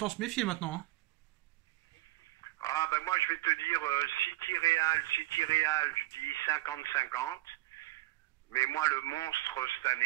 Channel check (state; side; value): quieter; left; 18.2 dB